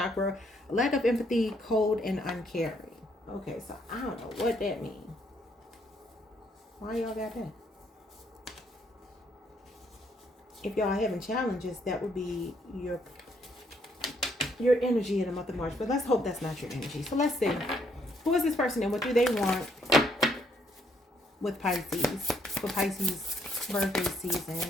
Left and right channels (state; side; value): normal; both; correlation 0.71